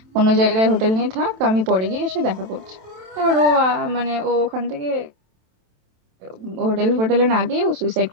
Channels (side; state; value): left; late; 27 ms